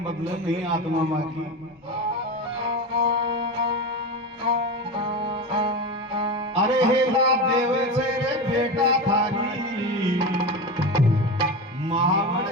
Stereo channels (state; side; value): normal; both; correlation 0.22